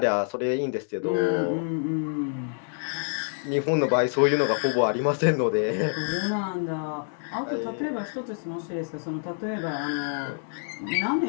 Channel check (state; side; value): silent; right; digital silence